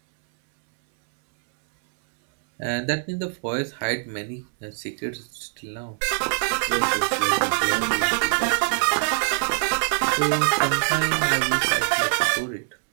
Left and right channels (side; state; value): left; silent; 63 dB below the other